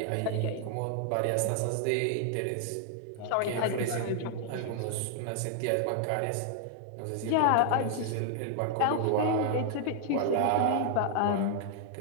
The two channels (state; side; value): different; both; correlation 0.00